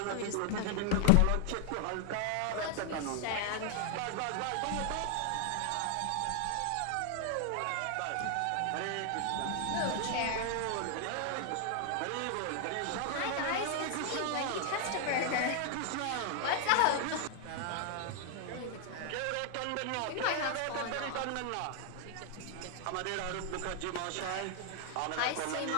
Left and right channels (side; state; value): both; different; correlation 0.00